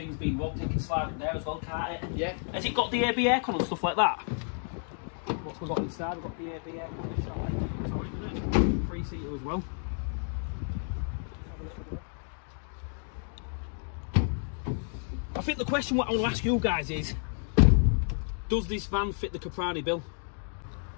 being robbed, you can slide it there as well, can't it? Yeah. Has it got the AB aircon and stuff like that? What we've got inside, we've got the AB aircon on this side. Sorry, isn't it? 3-seater as well. I think the question what I want to ask you guys is, does this van fit the Caprani bill?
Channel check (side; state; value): right; silent; 57 dB below the other